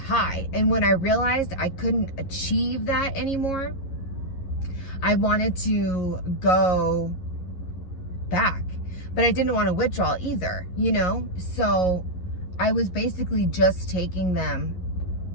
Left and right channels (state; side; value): late; right; 11 ms